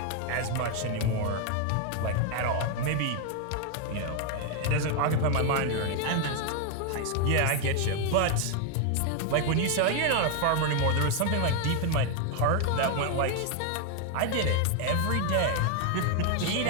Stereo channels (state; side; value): different; both; correlation 0.00